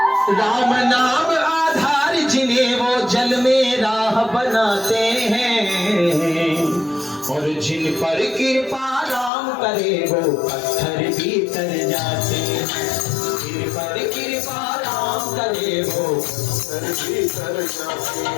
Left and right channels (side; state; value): right; drops out; at 9.3 s